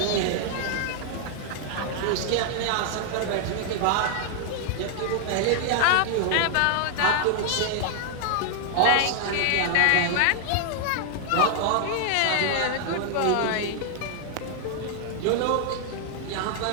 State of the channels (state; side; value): different; both; correlation 0.00